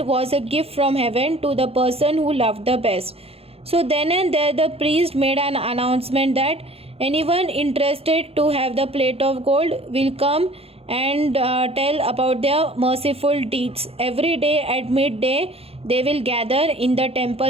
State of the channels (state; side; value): late; left; 0.28 ms